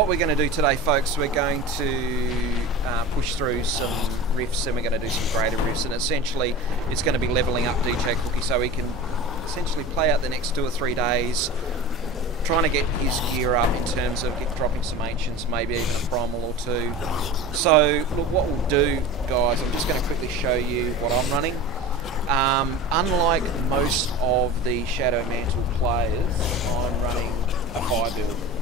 we're going to do today, folks, we're going to push through some rifts, and we're going to do some greater rifts, and essentially it's going to be leveling up DJ Cookie so he can essentially play out the next 2 or 3 days, trying to get his gear up in terms of dropping some ancients, maybe even a primal or 2. So look, what we'll do, guys, I'm just going to quickly show you what I'm running. Unlike most of the Shadow Mantle players, I'm running a fire build.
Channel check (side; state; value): both; normal; correlation 0.33